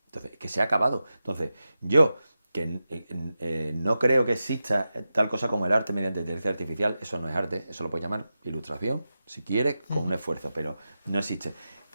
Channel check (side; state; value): both; inverted; correlation -0.91